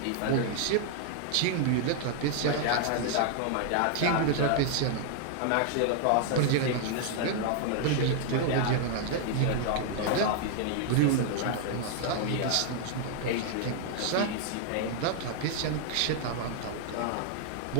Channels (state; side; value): different; both; correlation -0.01